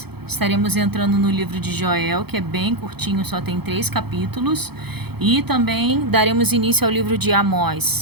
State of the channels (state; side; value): late; left; 0.97 ms